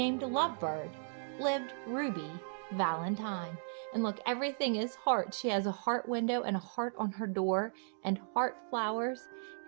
Lovebird, lived Ruby Valentine. And look, everything is heart. She has a heart window and a heart on her door and heart flowers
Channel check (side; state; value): left; silent; digital silence